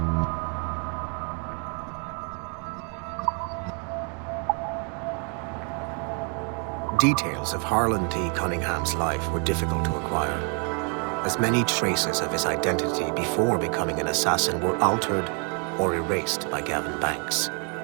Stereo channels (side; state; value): left; quieter; 38.6 dB